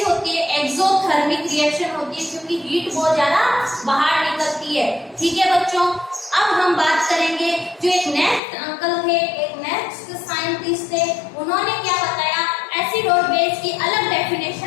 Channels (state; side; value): drops out; right; at 8.4 s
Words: होती है, एक्सोथर्मिक रिएक्शन होती है, क्योंकि हीट बहुत ज्यादा बाहर निकलती है। ठीक है बच्चों। अब हम बात करेंगे जो एक नेक्स्ट अंकल थे, एक नेक्स्ट साइंटिस्ट थे, उन्होंने क्या बताया, एसिड और बेस की अलग